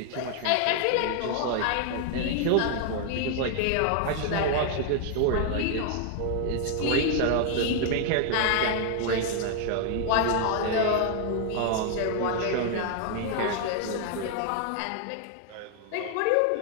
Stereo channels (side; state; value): both; different; correlation 0.00